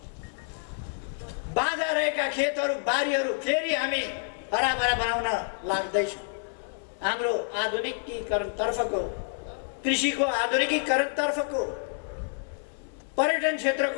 बाँझा रहेका खेतहरू, बारीहरू फेरि हामी हराभरा बनाउन लाग्दैछौँ। हाम्रो आधुनिकीकरण तर्फको, कृषिको आधुनिकीकरण तर्फको, पर्यटन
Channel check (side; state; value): right; silent; digital silence